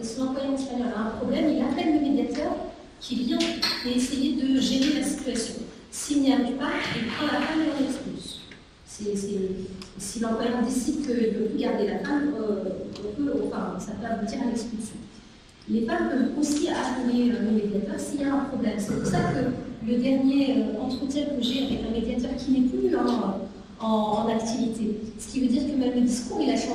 espagnol a un problème, il appelle le médiateur qui vient et essayer de gérer la situation. S'il n'y arrive pas, il prend la femme et l'expulse. Si l'employeur décide qu'il ne peut plus garder la femme, ça peut aboutir à l'expulsion. Les femmes peuvent aussi appeler le médiateur s'il y a un problème. C'est pour ça que le dernier entretien que j'ai avec un médiateur qui n'est plus en activité, ce qui veut dire que même le discours il a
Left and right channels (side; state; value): both; identical; correlation 1.00